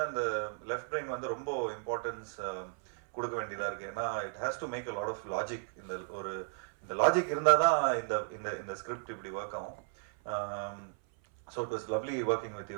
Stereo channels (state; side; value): silent; left; 55 dB below the other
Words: அந்த லெஃப்ட் பிரெயின் வந்து ரொம்ப இம்பார்ட்டன்ஸ் கொடுக்க வேண்டியதாக இருக்குது. ஏன்னா it has to make a lot of logic. இந்த லாஜிக் இருந்தால் தான் இந்த ஸ்கிரிப்ட் இப்படி ஒர்க் ஆகும். So it was lovely working with